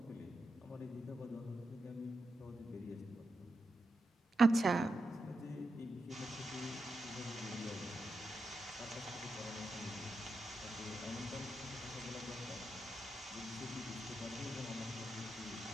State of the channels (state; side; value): normal; both; correlation 0.87